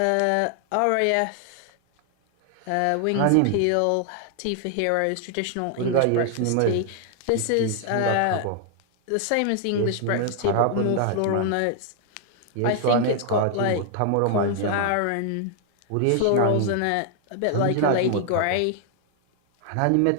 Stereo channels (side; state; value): both; different; correlation 0.00